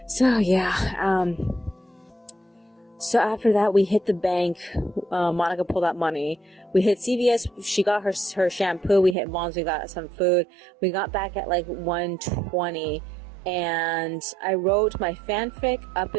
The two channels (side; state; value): left; drops out; at 9.2 s